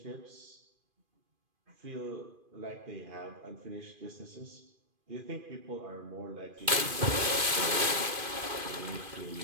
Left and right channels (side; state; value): left; late; 2.4 ms